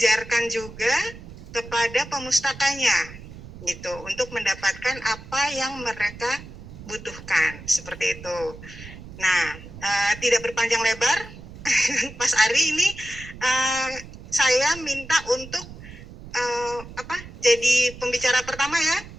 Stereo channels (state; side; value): noise; right; rumble, 15 dB below the sound